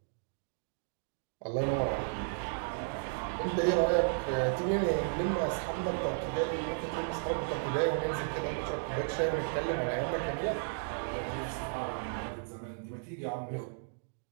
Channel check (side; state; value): left; silent; digital silence